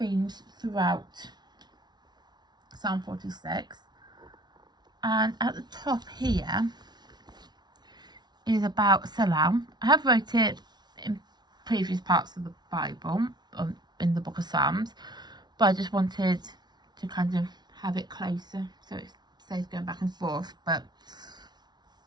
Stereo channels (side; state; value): left; late; 0.20 ms